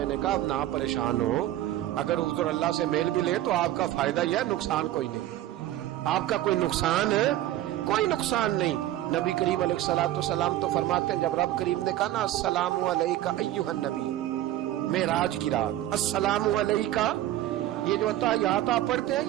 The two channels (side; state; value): left; quieter; 13.8 dB